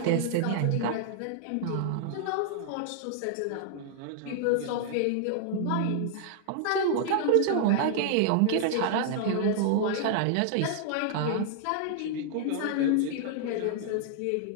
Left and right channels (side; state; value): both; different; correlation 0.00